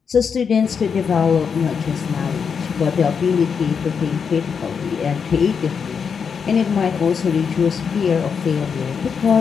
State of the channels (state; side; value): quieter; right; 6.4 dB